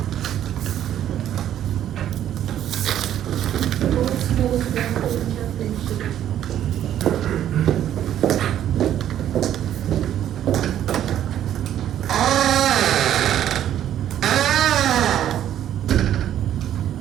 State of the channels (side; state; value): left; quieter; 11.1 dB